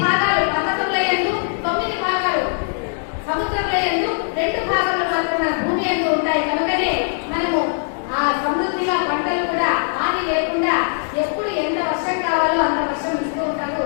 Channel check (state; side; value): silent; right; 60 dB below the other